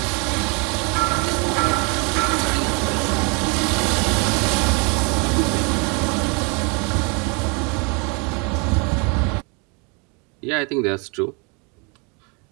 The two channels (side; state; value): left; quieter; 32.3 dB